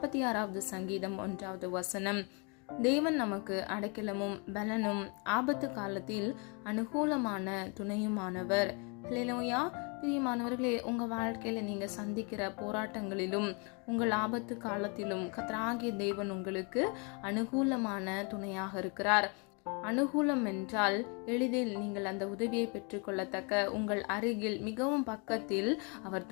சங்கீதம் 1வது வசனம். தேவன் நமக்கு அடைக்கலமும் பலனும் ஆபத்து காலத்தில் அனுகூலமான துணையுமானவர். ஹல்லேலூயா. பிரியமானவர்களே, உங்க வாழ்க்கையில நீங்க சந்திக்கிற போராட்டங்களிலும் உங்கள் ஆபத்து காலத்திலும் கர்த்தராகிய தேவன் உங்களுக்கு அனுகூலமான துணையாக இருக்கிறார். அனுகூலம் என்றால் எளிதில் நீங்கள் அந்த உதவியை பெற்றுக்கொள்ளத்தக்க உங்கள் அருகில் மிகவும் பக்கத்தில் அவர்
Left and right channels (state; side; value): quieter; right; 34.1 dB